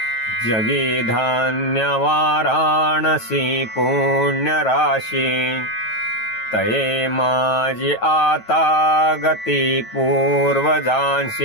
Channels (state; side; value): late; right; 9.1 ms